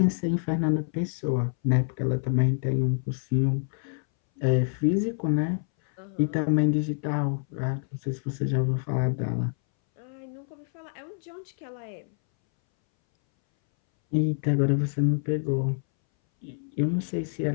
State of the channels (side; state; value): right; silent; 60 dB below the other